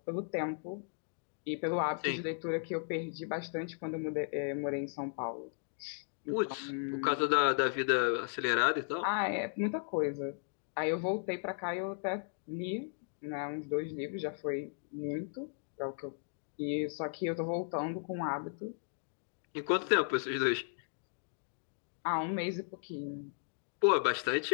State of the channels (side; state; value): right; silent; digital silence